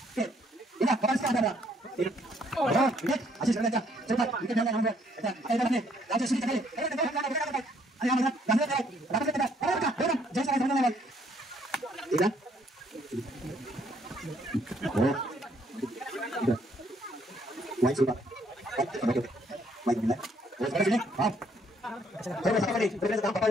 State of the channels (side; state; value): both; normal; correlation 0.67